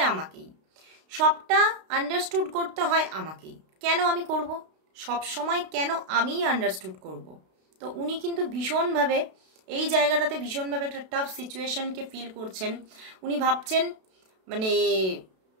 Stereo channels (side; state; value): left; late; 32 ms